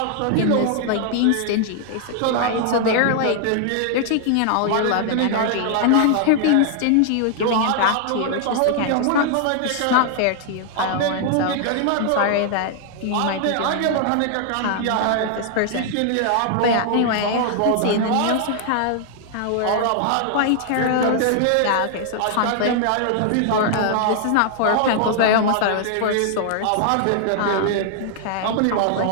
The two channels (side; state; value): both; different; correlation 0.00